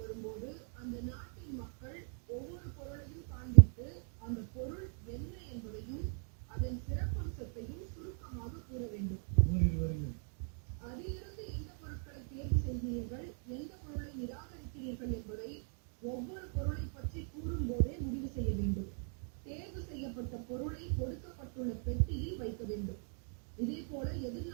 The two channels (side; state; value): left; silent; 52 dB below the other